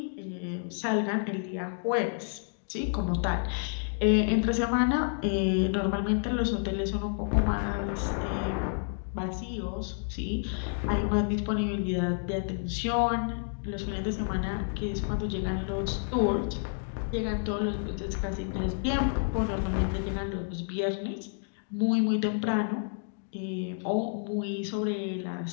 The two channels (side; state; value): right; silent; digital silence